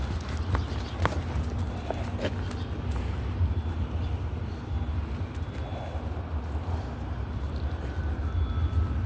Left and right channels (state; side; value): identical; both; correlation 1.00